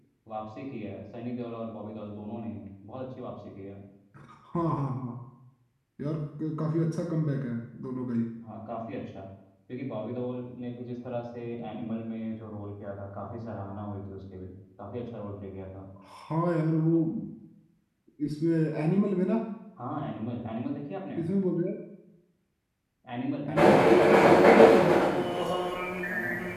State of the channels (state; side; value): identical; both; correlation 1.00